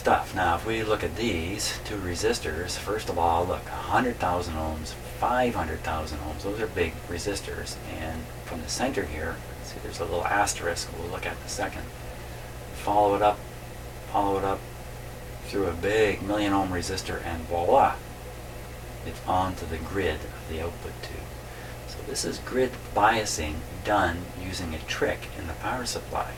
Now if we look at these two resistors, first of all, look, 100,000 ohms, 500,000 ohms, those are big resistors, and from the center here, see there's a little asterisk we'll look at in a second. Follow it up through a big 1,000,000 ohm resistor, and voila, it's onto the grid of the output tube. So this is grid biasing done using a trick in the power supply.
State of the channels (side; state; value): both; identical; correlation 1.00